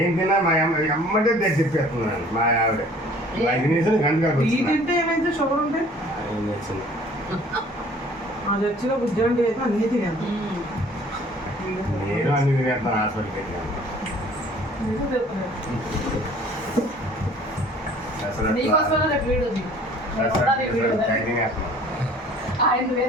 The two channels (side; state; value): both; normal; correlation 0.52